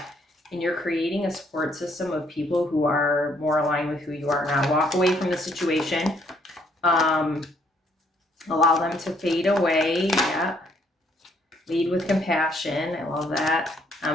And you're creating a support system of people who are more aligned with who you are now. Walk away from the situation. Allow them to fade away. Yeah. Lead with compassion. I love that.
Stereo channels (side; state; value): both; normal; correlation 0.68